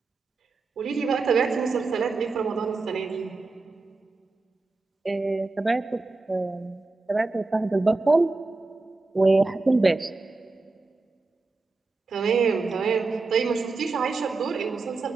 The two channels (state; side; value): quieter; left; 3.7 dB